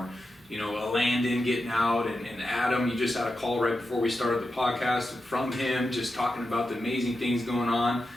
a Landon getting out, and Adam, you just had a call right before we started the podcast from him, just talking about the amazing things going on.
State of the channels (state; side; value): normal; both; correlation 0.89